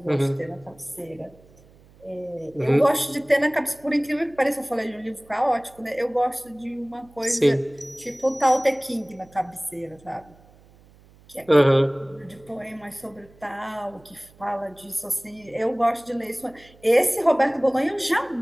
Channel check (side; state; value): right; noise; hum, 27 dB below the sound